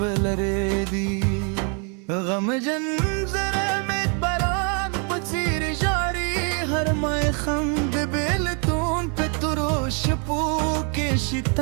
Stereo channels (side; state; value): left; quieter; 38.3 dB